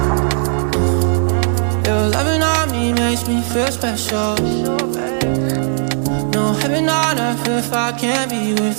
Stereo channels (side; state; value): left; silent; digital silence